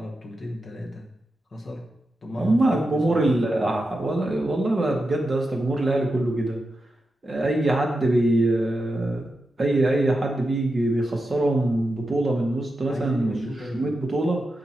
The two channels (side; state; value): both; normal; correlation 0.89